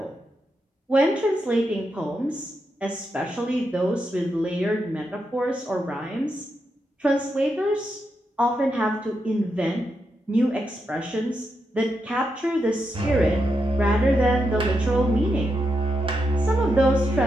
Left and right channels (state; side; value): normal; both; correlation 0.84